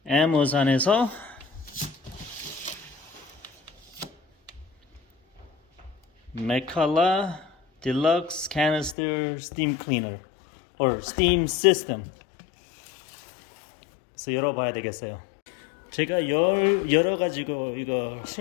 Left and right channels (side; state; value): right; drops out; at 9.0 s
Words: 애마존에서 Mcculloch Deluxe Canister Steam Cleaner or Steam System. 그래서 열어봐야 되겠어요. 제가 여러 가지고 이거